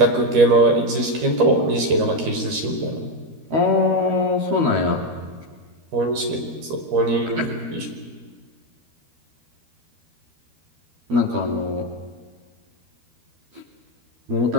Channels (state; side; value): late; left; 13 ms